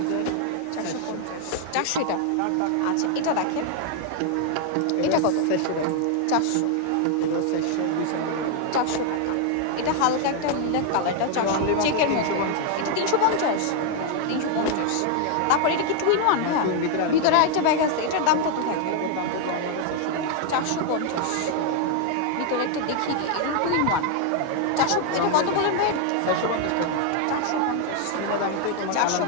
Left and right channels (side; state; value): both; different; correlation 0.00